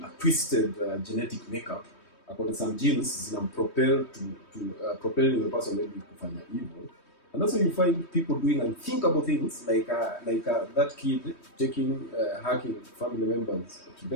a twisted genetic makeup. According to some genes, propelling the person maybe kufanya evil. And that's why you find people doing unthinkable things, like that kid hacking family members to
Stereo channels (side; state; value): right; late; 3.2 ms